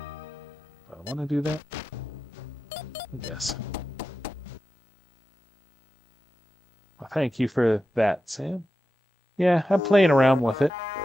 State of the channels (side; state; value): both; normal; correlation 0.91